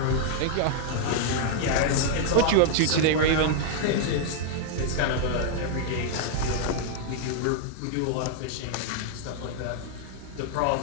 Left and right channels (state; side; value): different; both; correlation -0.01